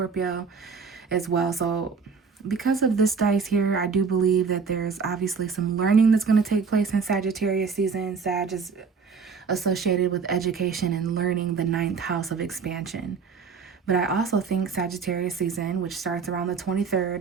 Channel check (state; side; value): quieter; left; 5.4 dB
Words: as well. So because of this dice here, I do believe that there's obviously some learning that's going to take place in Sagittarius season. Sag is associated with education and learning, the 9th house of expansion. But I also think Sagittarius season, which starts around the